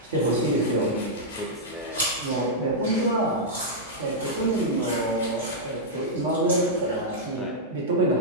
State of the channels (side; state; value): both; normal; correlation -0.08